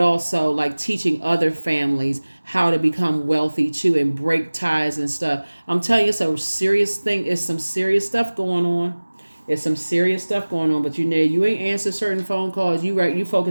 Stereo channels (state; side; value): inverted; both; correlation -1.00